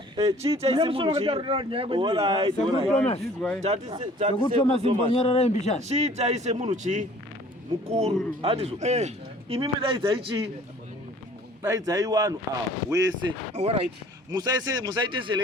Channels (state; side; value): normal; both; correlation 0.52